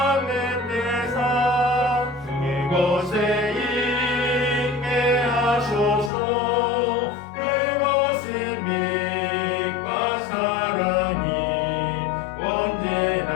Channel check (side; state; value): right; drops out; at 6.1 s